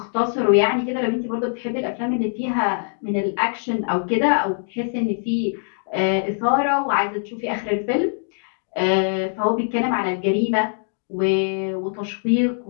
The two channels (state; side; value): silent; right; digital silence